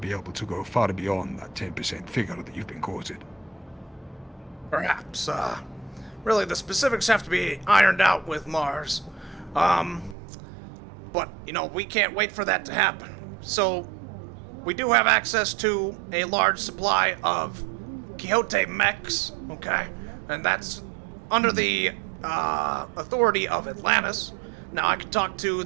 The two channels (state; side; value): drops out; left; at 10.2 s